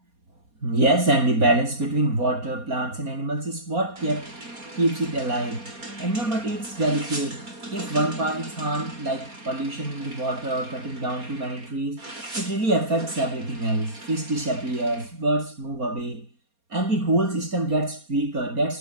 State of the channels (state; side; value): late; left; 4.3 ms